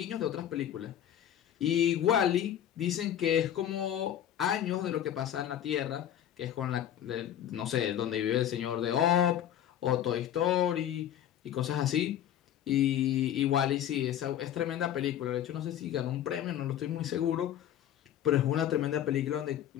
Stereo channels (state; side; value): quieter; right; 10.7 dB